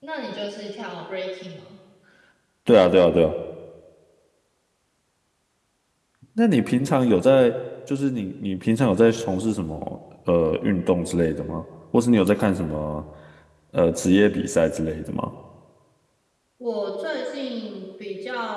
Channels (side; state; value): both; identical; correlation 1.00